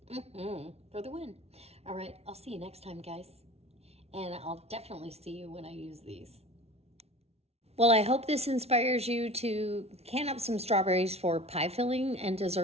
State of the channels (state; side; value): late; left; 0.30 ms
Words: for the win. All right, I'll see you next time, guys. And I'll definitely see you when I use these. Well, I hope this inspires you to can up some strawberries for pie filling and